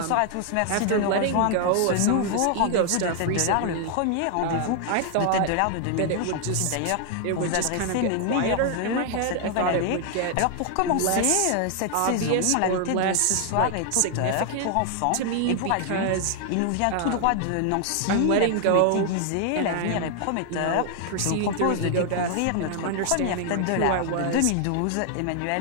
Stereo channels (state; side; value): different; both; correlation 0.00